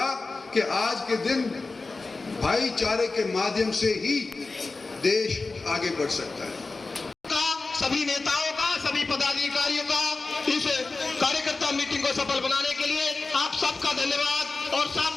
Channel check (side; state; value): right; quieter; 3.7 dB